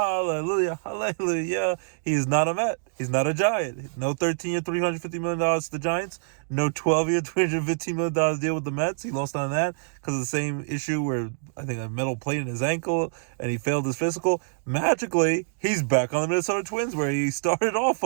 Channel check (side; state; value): left; silent; digital silence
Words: hallelujah. He is not a Met. He's not a Giant. No 13-year, $350 million to the Giants. No 12-year, $315 million deal with the Mets. He lost on that because of the same issue where I think a metal plate in his ankle and he failed his physical. Magically, he's back on the Minnesota Twins where he started off